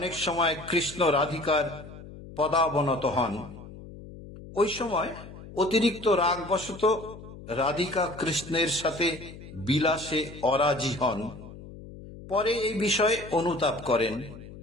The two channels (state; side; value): noise; left; hum, 15 dB below the sound